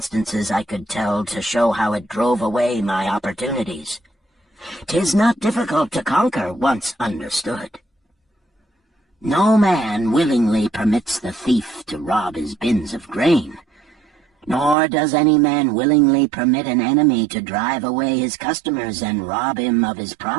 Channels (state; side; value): drops out; left; at 14.8 s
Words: I could tell to show how it drove away my opportunities. 'Tis not difficult to conquer once understood. No man willingly permits the thief to rob his bins of grain, nor does any man willingly permit an enemy to drive away his customers and rob him of his